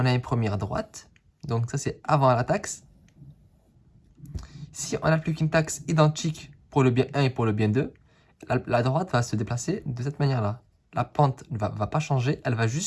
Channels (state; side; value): identical; both; correlation 1.00